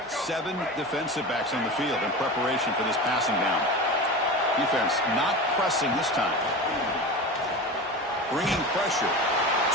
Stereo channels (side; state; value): both; normal; correlation 0.29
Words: Seven defensive backs on the field in preparation for this passing down. Defense not pressing this time. Bringing pressure